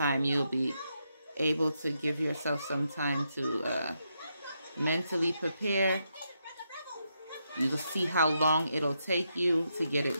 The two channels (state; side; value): inverted; both; correlation -0.82